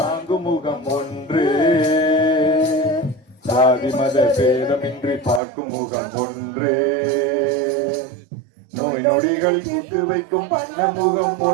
முகம் ஒன்று, சாதி மத பேதமின்றி பார்க்கும் முகம் ஒன்று. நோய் நொடிகள் தீர்த்து வைக்கும் வண்ண முகம்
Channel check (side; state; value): left; drops out; at 5.4 s